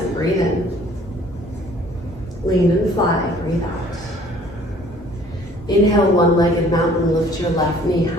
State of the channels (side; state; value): both; normal; correlation 0.55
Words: breathe in. Lean and fly, breathe out. Inhale, one-legged mountain, lift your left knee